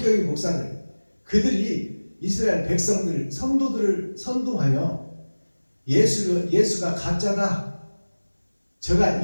목사들, 그들이 이스라엘 백성들, 성도들을 선동하여 예수가 가짜다, 저가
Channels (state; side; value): inverted; both; correlation -1.00